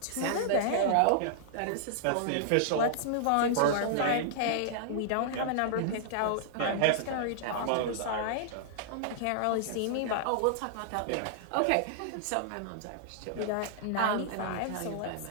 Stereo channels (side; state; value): both; different; correlation -0.01